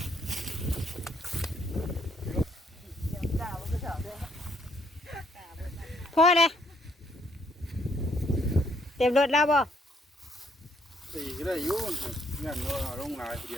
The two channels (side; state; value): both; normal; correlation 0.69